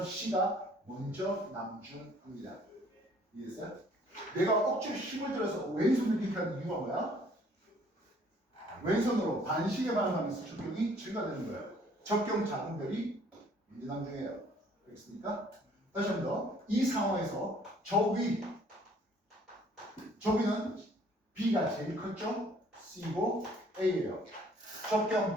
C가 먼저 남중합니다. 이해했어요? 내가 억지로 힘을 들어서 왼손을 이렇게 하는 이유가 뭐야? 왼손으로 반시계 반응하면서 적경이 증가되는 거예요. 적경 작은 별이 먼저 남중해요. 알겠습니까? 다시 한 번 더. 이 상황에서 저위는 B가 제일 컸죠? C고 A예요.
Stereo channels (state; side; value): normal; both; correlation 0.59